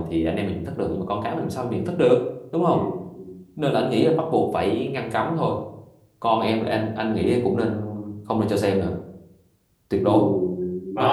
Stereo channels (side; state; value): both; identical; correlation 1.00